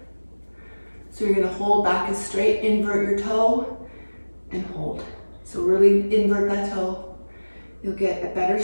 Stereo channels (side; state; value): both; inverted; correlation -1.00